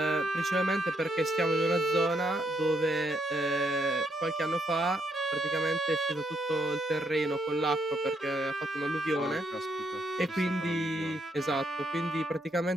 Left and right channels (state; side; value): normal; both; correlation 0.75